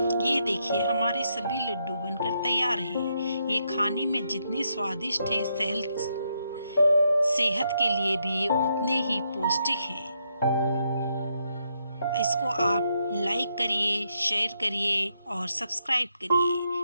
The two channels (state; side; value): inverted; both; correlation -0.79